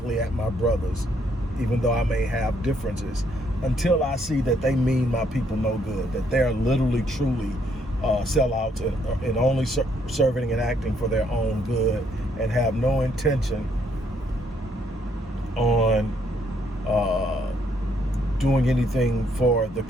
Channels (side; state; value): both; normal; correlation 0.70